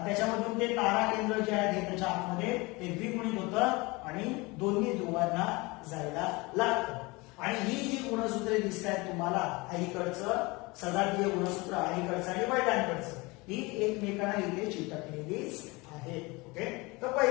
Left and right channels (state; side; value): quieter; right; 24.5 dB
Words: ते तारा केंद्र जे आहे त्याच्या आतमध्ये ते द्विगुणित होतं आणि दोन्ही ध्रुवांना जायला लागतं. आणि ही जी गुणसूत्रे दिसत आहेत तुम्हाला, आईकडचं सजातीय गुणसूत्र, आईकडचं आणि वडिलांकडचं, ही एकमेकांना इथे चिटकलेलीच आहे. ओके. तर